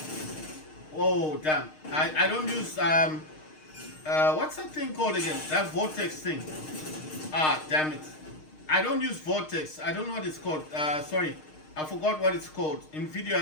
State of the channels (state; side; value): late; right; 6.5 ms